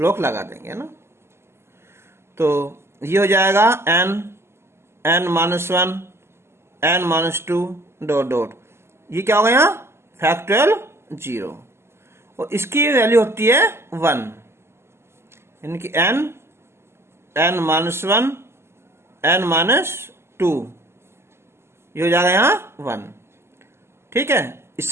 लगा देंगे ना। तो ये हो जाएगा n-1 n-2 डॉट डॉट, ये क्या होगा यहाँ फैक्टोरियल 0, और इसकी वैल्यू होती है 1, यानी कि n-1 n-2, ये हो जाएगा यहाँ 1। ठीक है,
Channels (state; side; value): late; left; 0.12 ms